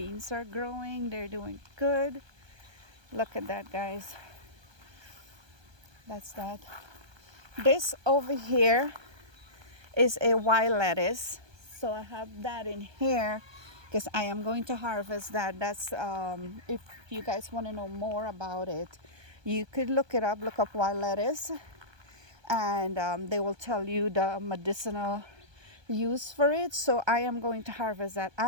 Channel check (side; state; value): left; late; 1.2 ms